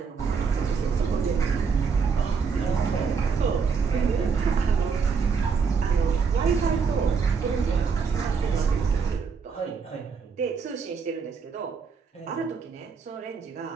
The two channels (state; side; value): quieter; left; 5.6 dB